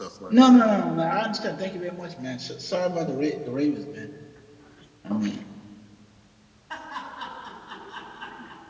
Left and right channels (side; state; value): both; identical; correlation 1.00